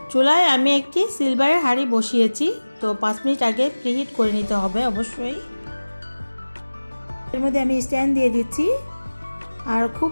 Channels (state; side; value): inverted; both; correlation -1.00